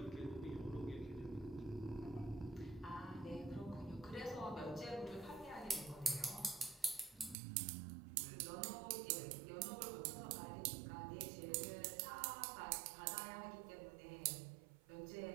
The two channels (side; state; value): left; drops out; at 7.4 s